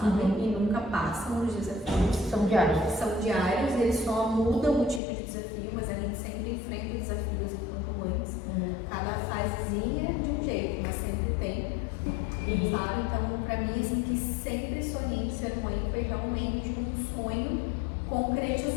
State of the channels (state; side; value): drops out; right; at 5.0 s